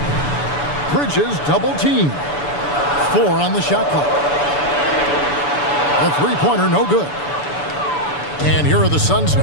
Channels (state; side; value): late; right; 6.9 ms